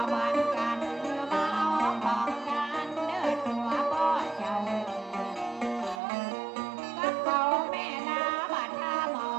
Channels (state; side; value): drops out; left; at 6.0 s